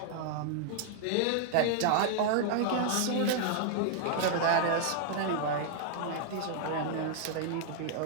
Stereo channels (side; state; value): both; different; correlation -0.01